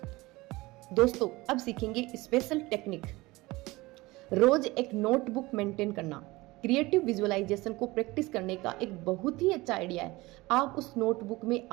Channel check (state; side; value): quieter; left; 21.0 dB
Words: दोस्तों, अब सीखेंगे स्पेशल टेक्निक। रोज एक नोटबुक मेंटेन करना क्रिएटिव विजुअलाइजेशन को प्रैक्टिस करने का एक बहुत ही अच्छा आइडिया है। आप उस नोटबुक में